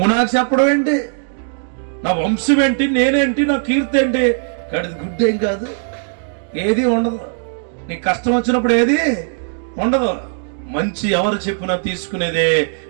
నాకు చెప్పడం ఏంటి, నా వంశం ఏంటి, నేనేంటి, నా కీర్తి ఏంటి, గడిది గుడ్డేం కాదు, ఏది ఉండదు. నీ కష్టం వచ్చినప్పుడు ఏది ఉండదు. మంచి ఎవరు చెప్పినా తీసుకునేదే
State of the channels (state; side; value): silent; left; digital silence